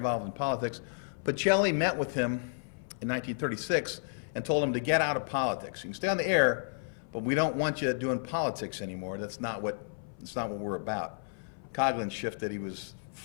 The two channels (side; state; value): right; silent; 56 dB below the other